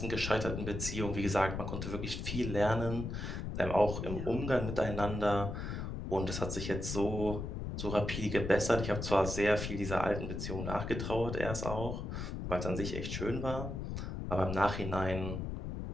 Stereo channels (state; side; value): noise; left; rumble, 4 dB below the sound